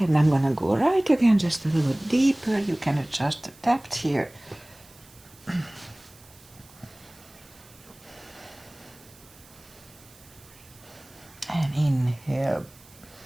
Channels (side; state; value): right; noise; hiss, 25 dB below the sound